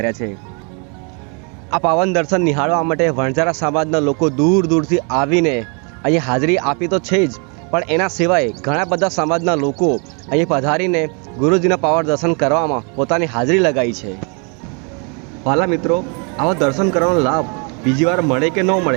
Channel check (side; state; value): left; quieter; 35.8 dB